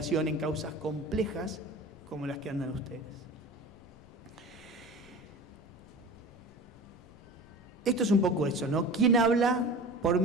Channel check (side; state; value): left; noise; rumble, 25 dB below the sound